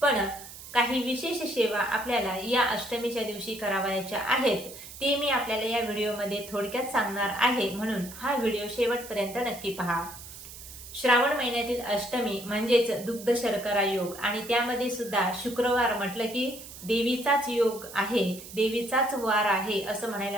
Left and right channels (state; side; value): noise; right; hiss, 14 dB below the sound